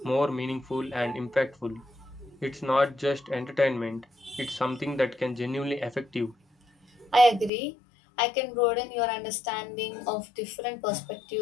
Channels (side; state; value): right; drops out; at 7.5 s